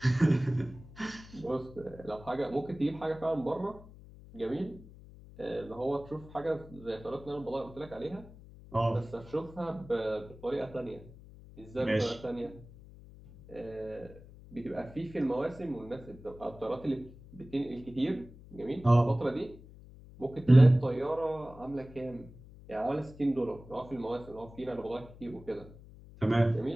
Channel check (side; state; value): left; noise; hum, 19 dB below the sound